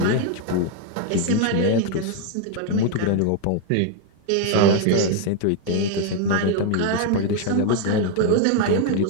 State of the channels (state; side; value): different; both; correlation 0.00